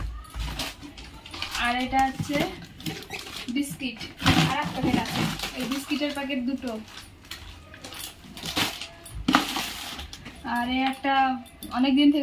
আর এটা হচ্ছে বিস্কিট, আর এক প্যাকেট আছে, এই বিস্কিটের প্যাকেট দুটো। আর এই একটা অনেকদিন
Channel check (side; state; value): both; identical; correlation 1.00